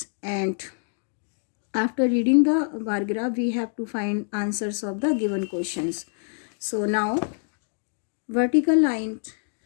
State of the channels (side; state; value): right; silent; digital silence